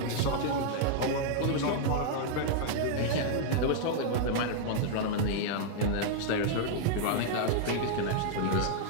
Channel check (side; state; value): both; different; correlation -0.01